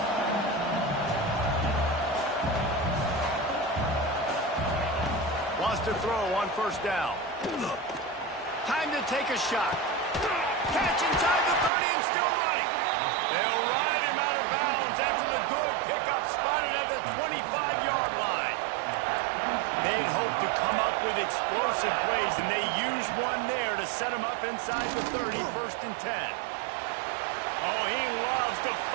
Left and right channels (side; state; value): left; drops out; at 11.7 s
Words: Wants to throw on first down. Time to take a shot. Catch inside the 30 and still running. They'll ride him out of bounds after the good pickup spotted at the 25-yard line. They'd hoped to come up with explosive plays, and they used one there to set him up inside the 30, first and 10. Oh, he loves to